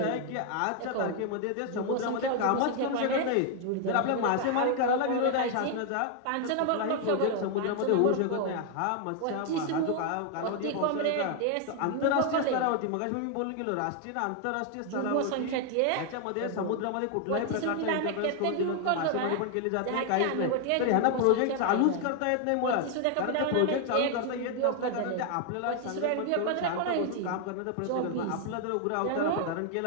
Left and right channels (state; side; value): different; both; correlation 0.00